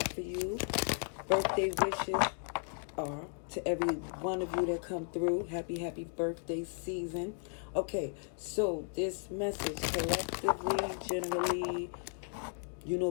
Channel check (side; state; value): right; silent; 54 dB below the other